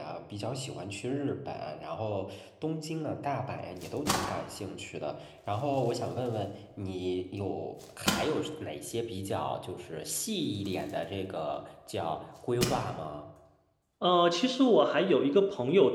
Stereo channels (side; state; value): both; identical; correlation 1.00